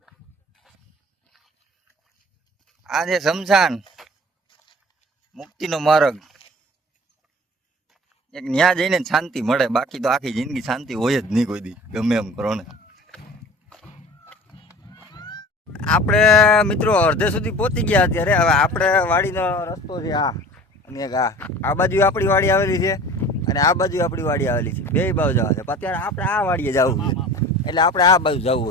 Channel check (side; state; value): both; normal; correlation 0.42